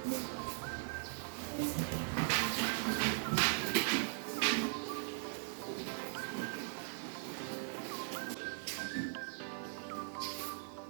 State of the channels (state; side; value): silent; left; digital silence